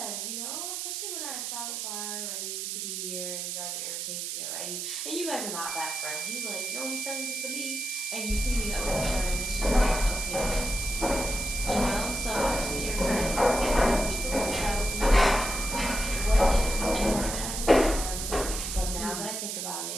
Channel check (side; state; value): right; noise; hiss, 4 dB below the sound